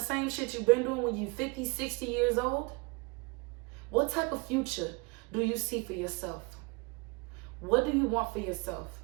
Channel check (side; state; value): left; quieter; 29.2 dB